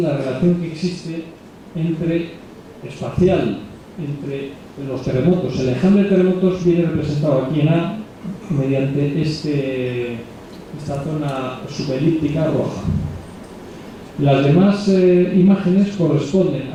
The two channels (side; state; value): both; identical; correlation 1.00